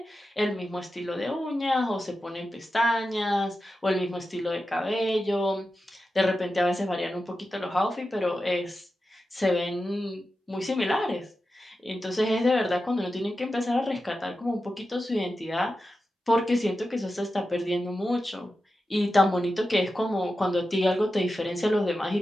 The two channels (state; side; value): normal; both; correlation 0.91